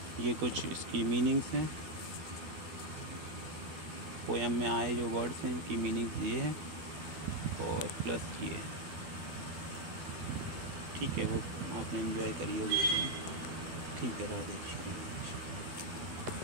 ये कुछ इसकी मीनिंग्स हैं, पोयम में आए जो वर्ड्स हैं इनकी मीनिंग्स ये हैं और प्लस ये। ठीक है, वो आपने एंजॉय करी होगी। ठीक है, राधे।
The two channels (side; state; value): left; late; 13 ms